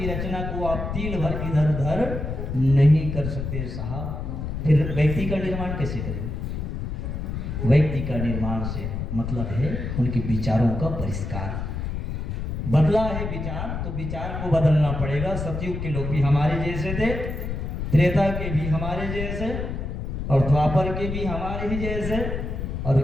रचना को आप तिल भर इधर उधर नहीं कर सकते साहब। फिर व्यक्ति का निर्माण कैसे करेंगे? व्यक्ति का निर्माण से मतलब है उनके विचारों का परिष्कार। बदला है विचार, तो विचार को बदलना पड़ेगा। सतयुग के लोग भी हमारे जैसे थे, त्रेता के भी हमारे जैसे, और द्वापर के भी हमारे ही जैसे, और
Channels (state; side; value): noise; left; rumble, 4 dB below the sound